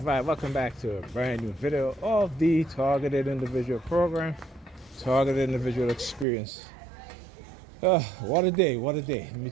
welcome back to a brand new video of the Targeted Individual Program, Targeted Individual Experience. What a day, what a day, let me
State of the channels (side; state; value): left; drops out; at 6.2 s